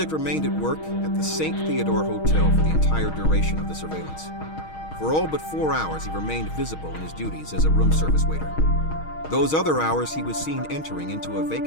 remained at work at the St. Theodore Hotel for the entire duration of the surveillance. For all but 4 hours, he remained visible in his duties as a room service waiter. Those other hours, he was seen entering into a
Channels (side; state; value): right; late; 6.4 ms